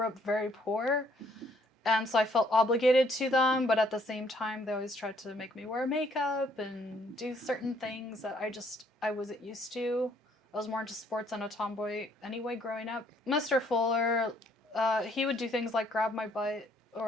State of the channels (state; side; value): normal; both; correlation 0.65